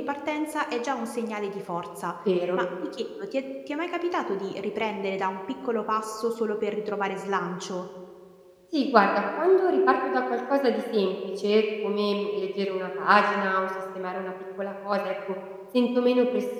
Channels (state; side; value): identical; both; correlation 1.00